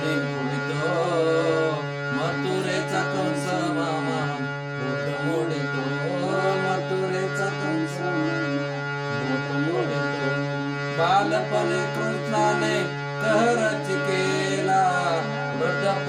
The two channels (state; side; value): identical; both; correlation 1.00